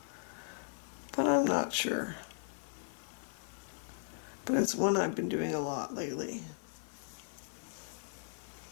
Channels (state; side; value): silent; right; 53 dB below the other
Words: but I'm not sure. But it's one I've been doing a lot lately.